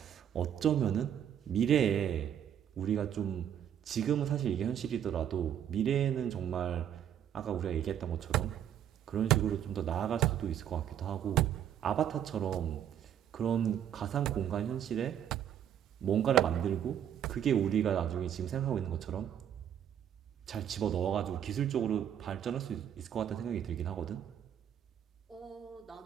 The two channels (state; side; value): quieter; left; 9.7 dB